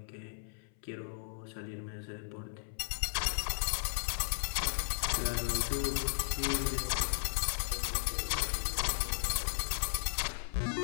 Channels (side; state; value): right; silent; 54 dB below the other